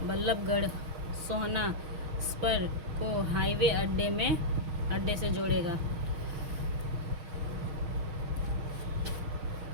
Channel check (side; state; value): left; late; 6.4 ms